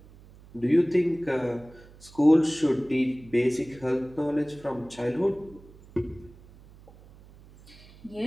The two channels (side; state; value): right; noise; hum, 23 dB below the sound